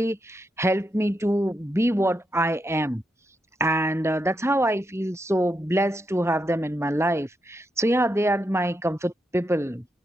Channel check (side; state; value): both; normal; correlation 0.83